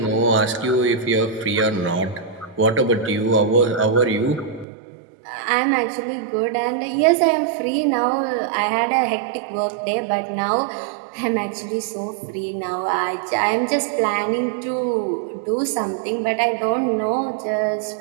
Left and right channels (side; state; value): left; drops out; at 4.7 s